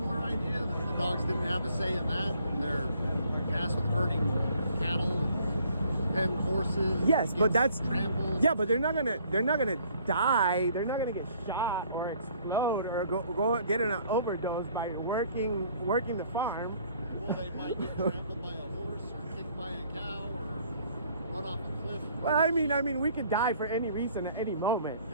idea that the dogs didn't have a say in that. They're tasked with herding cattle and pen horses. Yes, but that's trampled. yeah, but they're not gonna die. They're not gonna get shot or explode or go get in an overdose by working the farm. Well, they might get trampled by a horse or kicked by a cow or run off a cliff. Well, I mean, we could die for any reason at any moment.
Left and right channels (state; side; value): inverted; both; correlation -0.60